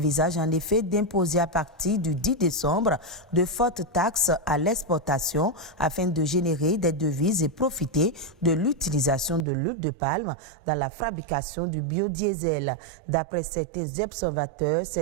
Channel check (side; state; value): left; drops out; at 9.5 s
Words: en effet d'imposer à partir du 10 décembre de fortes taxes à l'exportation afin de générer des devises et profiter de l'utilisation de l'huile de palme dans la fabrication du biodiesel. D'après certains observateurs,